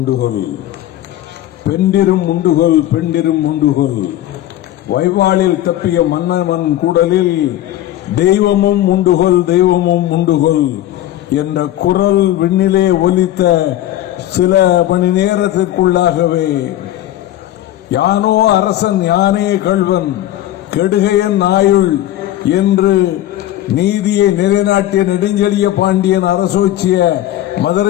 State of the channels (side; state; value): right; quieter; 13.6 dB